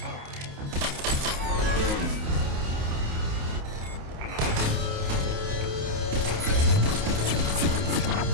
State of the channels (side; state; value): left; late; 28 ms